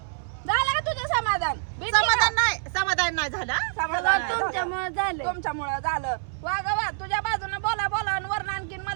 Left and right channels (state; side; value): silent; left; 61 dB below the other